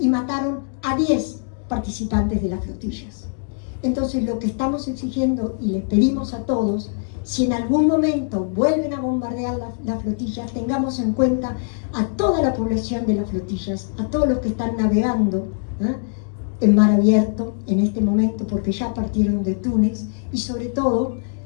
mataron a 10 participantes de las flotillas. Entonces lo que estamos exigiendo y les pedimos a todos, si en algún momento vuelven a bombardear las flotillas, tengamos en cuenta a toda la población de las flotillas, a todos los que están navegando en mar abierto en este momento, porque ya partieron de Túnez, y sobre todo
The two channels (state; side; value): silent; right; 64 dB below the other